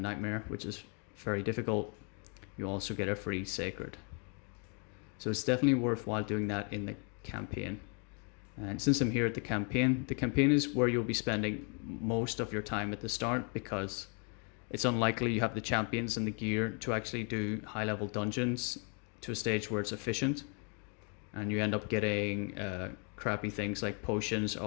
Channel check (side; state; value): right; quieter; 38.4 dB